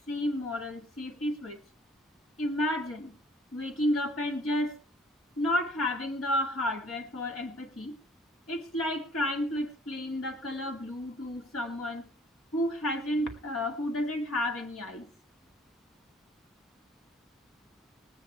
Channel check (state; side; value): normal; both; correlation 0.57